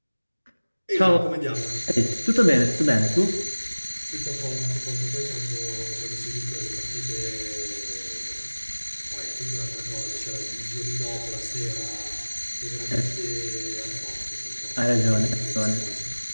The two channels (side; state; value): both; inverted; correlation -1.00